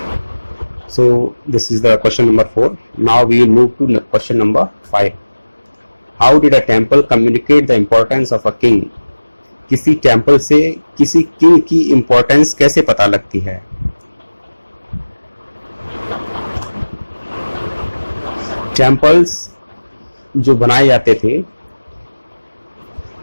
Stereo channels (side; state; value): both; inverted; correlation -1.00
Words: So this is the question number 4. Now we will move to question number 5. How did a temple communicate the importance of a king? किसी टेम्पल से किसी किंग की इंपॉर्टेंस कैसे पता लगती है? टेम्पल्स जो बनाए जाते थे